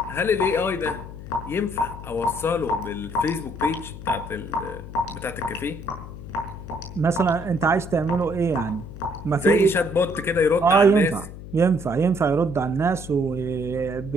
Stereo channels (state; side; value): noise; left; hum, 12 dB below the sound